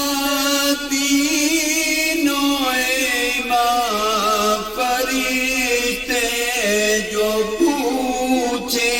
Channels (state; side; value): identical; both; correlation 1.00